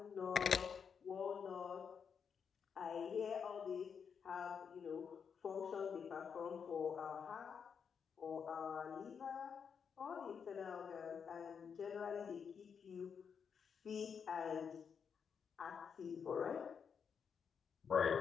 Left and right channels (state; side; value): quieter; right; 6.7 dB